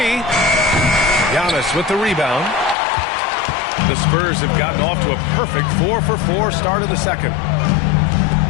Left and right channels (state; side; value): drops out; right; at 2.8 s